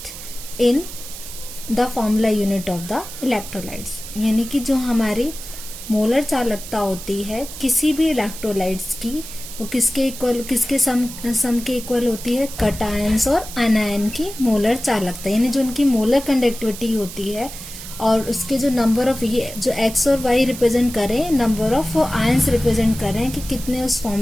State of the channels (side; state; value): right; noise; hiss, 12 dB below the sound